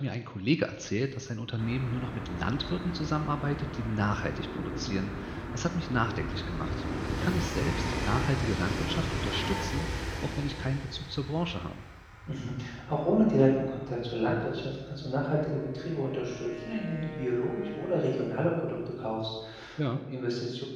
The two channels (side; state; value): both; identical; correlation 1.00